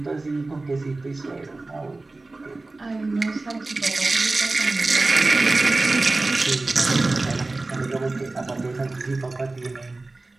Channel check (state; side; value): quieter; left; 3.2 dB